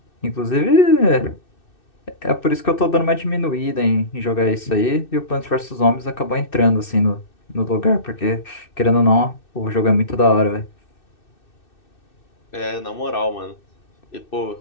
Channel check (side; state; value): right; late; 2.6 ms